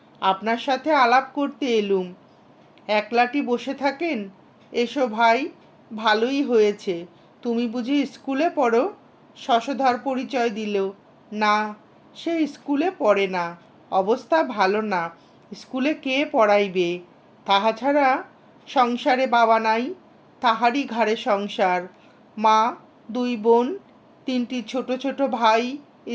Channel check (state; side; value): identical; both; correlation 1.00